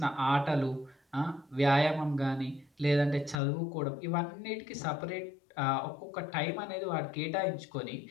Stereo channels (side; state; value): right; drops out; at 3.4 s